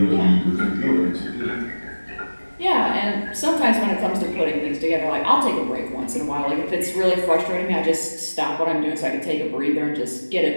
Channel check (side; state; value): both; inverted; correlation -1.00